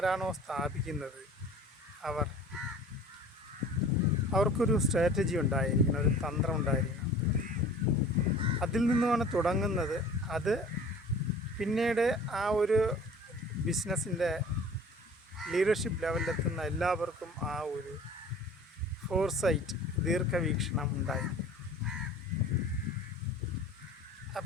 സ്ഥാപിക്കുന്നത് അവർക്കൊരു സ്ട്രാറ്റജി ഉണ്ടായിരിക്കണം, ഒരു തന്ത്രം ഉണ്ടായിരിക്കണം. അതിൽ നിന്നുമാണ് തുടങ്ങുന്നത്. അത് പിന്നീട് ആ ഒരു ബിസിനസ്സിൻ്റെ ലീഡർഷിപ്പ് ലെവലിലെത്തുന്ന എല്ലാവർക്കും ആ ഒരു ഫോർസൈറ്റ്, ദീർഘവീക്ഷണം ഉണ്ടായിരിക്കും.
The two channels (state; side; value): normal; both; correlation 0.45